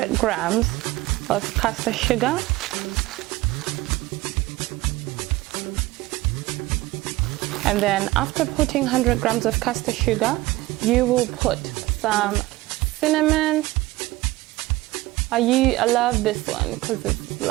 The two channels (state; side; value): quieter; left; 18.9 dB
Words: grams of caster sugar, and then after putting 100 grams of caster sugar, you will put some cinnamon. I love this one because it's